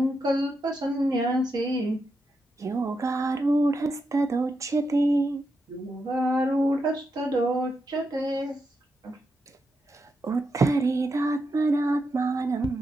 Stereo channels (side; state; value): both; normal; correlation 0.85